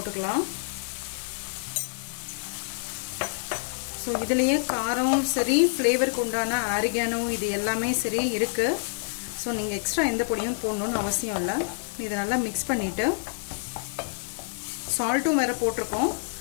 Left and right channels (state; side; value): silent; right; digital silence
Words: ஸோ இதுலேயே காரம் சரி, ஃப்ளேவருக்கு உண்டான ஆரிகானோ இது எல்லாமே சரி இருக்கு. ஸோ நீங்கள் எக்ஸ்ட்ரா எந்த பொடியும் போடணும்னு அவசியம் இல்லை. இதை நல்லா மிக்ஸ் பண்ணிட்டு சால்ட்டும் வேற போட்டிருக்கோம்,